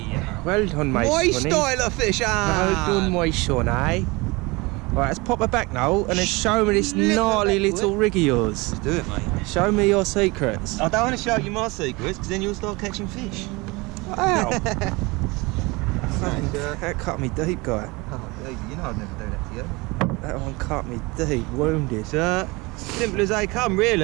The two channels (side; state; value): left; quieter; 24.7 dB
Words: Well done, mate. My style of fish, Well done, my son, eh? Right, let's pop her back now and then show me this gnarly little rig of yours. Let's do it, mate. Show me your secrets. I don't want to show you my secrets because then you'll start catching fish. Wow. That cut me deep, guy. Oh, you know I'd never do that to you. That one cut me deep, wounded. Simple as they come,